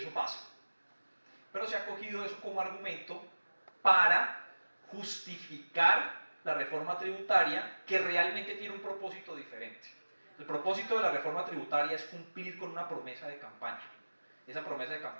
pasa. Pero se ha cogido eso como argumento para justificar la reforma tributaria que realmente tiene un propósito diferente. El propósito de la reforma tributaria es cumplir con una promesa de campaña. Esa promesa de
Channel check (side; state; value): both; inverted; correlation -1.00